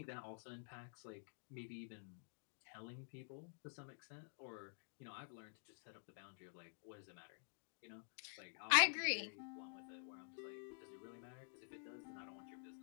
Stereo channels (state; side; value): silent; right; digital silence